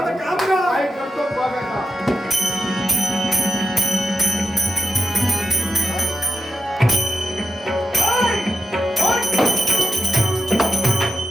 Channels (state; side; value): normal; both; correlation 0.87